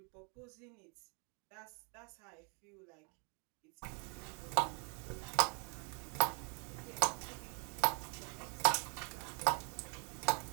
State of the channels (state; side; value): quieter; left; 35.2 dB